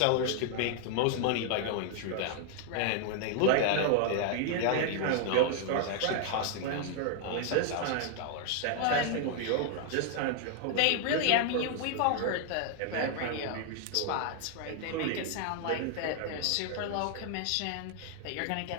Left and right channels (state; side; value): different; both; correlation 0.00